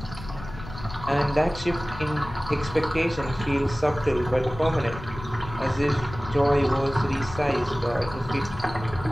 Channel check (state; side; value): noise; left; rumble, 13 dB below the sound